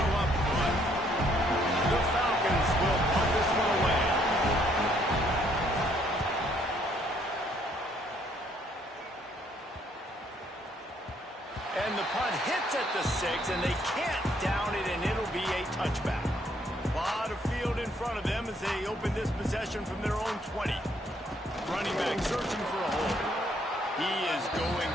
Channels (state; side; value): normal; both; correlation 0.67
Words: up front. The Falcons will put this one away. And the punt hits at the 6, and they can't down it, and it'll be a touchback. A lot of field in front of them as they open this possession from their own 20. Running back searching for a hole. He is going